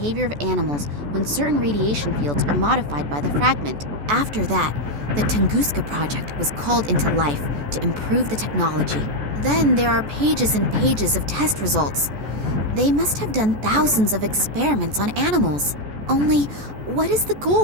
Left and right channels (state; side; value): late; left; 14 ms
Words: of animals when certain radiation fields are modified by the fragment. After that, the Tunguska project was called into life to improve the technology. Then there are pages and pages of test results. They must have done thousands of experiments on animals. Only, what is the